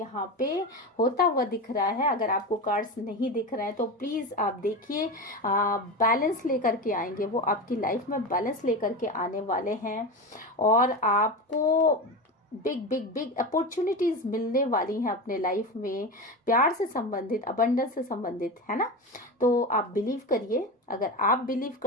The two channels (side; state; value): both; normal; correlation 0.22